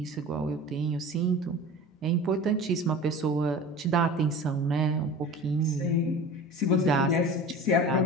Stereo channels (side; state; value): both; normal; correlation 0.37